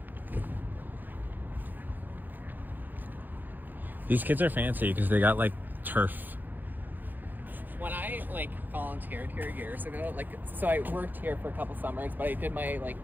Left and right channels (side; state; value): left; late; 0.087 ms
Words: These kids are fancy because they got like turf. When I like volunteered here years ago, like so I worked here for a couple summers, but I did my like